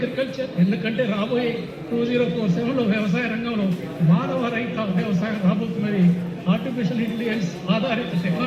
ఎందుకంటే రాబోయే 2047లో వ్యవసాయ రంగంలో మానవ రహిత వ్యవసాయం రాబోతున్నది, ఆర్టిఫిషియల్ ఇంటెలిజెన్స్ ఆధారిత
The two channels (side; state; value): both; identical; correlation 1.00